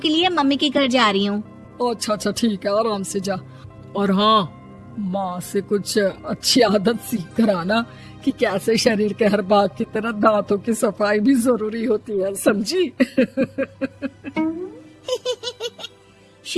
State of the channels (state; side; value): identical; both; correlation 1.00